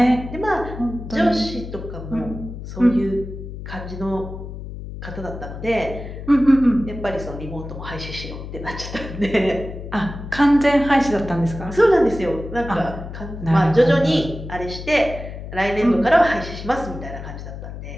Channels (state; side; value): noise; left; hum, 10 dB below the sound